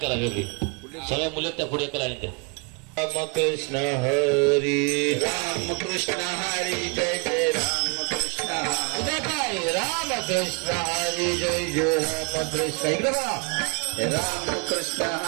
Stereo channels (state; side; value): quieter; left; 34.6 dB